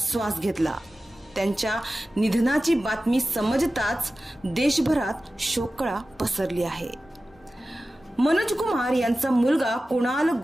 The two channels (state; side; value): normal; both; correlation 0.95